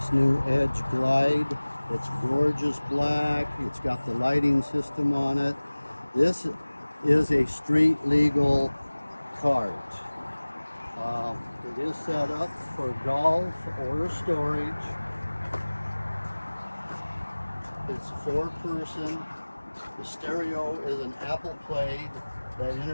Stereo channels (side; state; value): both; inverted; correlation -1.00